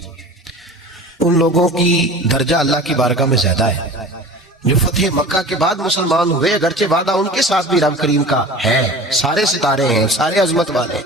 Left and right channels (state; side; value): normal; both; correlation 0.39